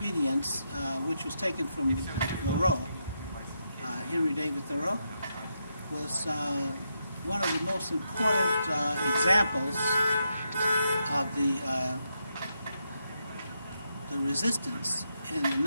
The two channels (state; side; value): inverted; both; correlation -0.82